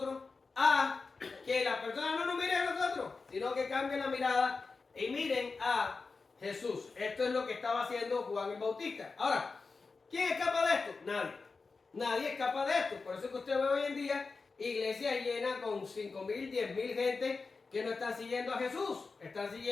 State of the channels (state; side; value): quieter; right; 4.3 dB